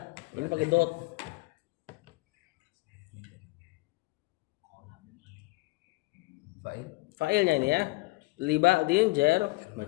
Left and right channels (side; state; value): right; quieter; 22.7 dB